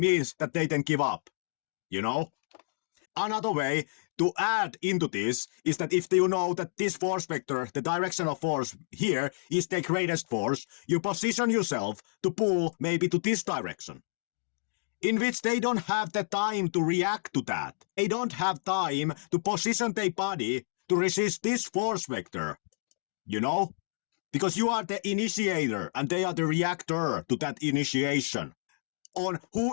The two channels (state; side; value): silent; right; digital silence